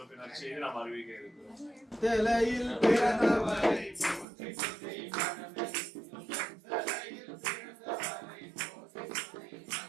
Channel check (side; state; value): left; drops out; at 4.2 s